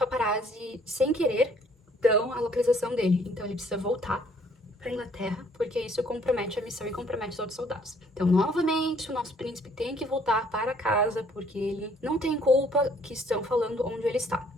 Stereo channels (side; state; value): both; normal; correlation 0.62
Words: sem querer, dão a localização dele. Então ele precisa voltar pra Inglaterra, porque isso compromete a missão e compromete os outros soldados. Então, novamente, o nosso príncipe tem que voltar para casa, porque ele não tem culpa que estão falando onde ele está.